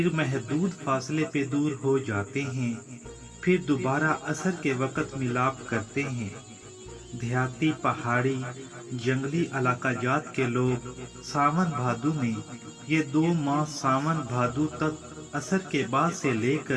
महदूद फासले पे दूर हो जाते हैं, फिर दोबारा असर के वक़्त मिलाप करते हैं। देहाती, पहाड़ी, जंगली इलाका जात के लोग सावन भादु में ये दो माह सावन भादु तक असर के बाद से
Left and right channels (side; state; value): both; identical; correlation 1.00